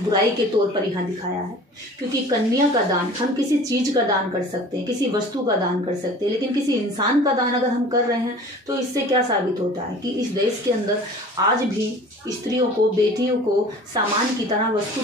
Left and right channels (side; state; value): both; normal; correlation 0.44